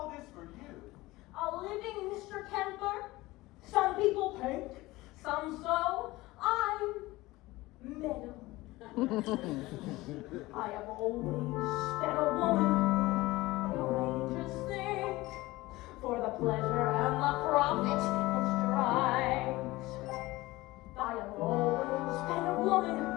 this for you? A living Mr. Kemper. Some people paint, some sew. I'm metal. I have always been a woman. No angels think for the pleasure and the profit it strives. I have always been a woman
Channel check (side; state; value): right; quieter; 19.6 dB